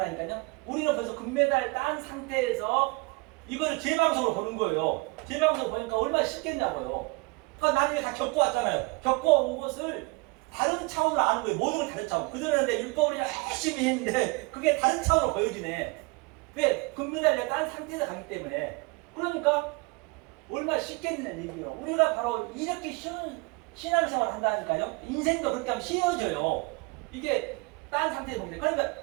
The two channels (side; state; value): left; quieter; 27.1 dB